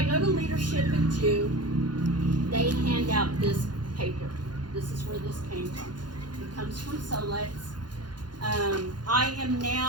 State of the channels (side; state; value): left; late; 0.71 ms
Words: go to leadership in June. They hand out this paper. This is where this came from. It comes from Solex. I am